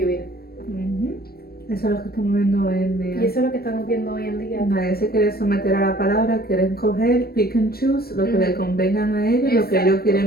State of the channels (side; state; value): right; late; 0.45 ms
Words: Eso es lo que estamos viendo hoy en día. Y eso es lo que estamos viendo hoy en día. Nadie se quiere someter a la palabra, quieren coger, pick and choose, lo que le convengan a ellos, lo que ellos